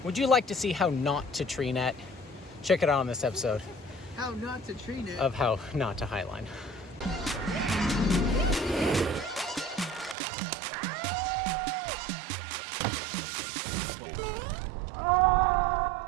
Would you like to see how not to tree net? Check it out on this episode How not to tree net. of how not to highline.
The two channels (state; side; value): drops out; left; at 10.2 s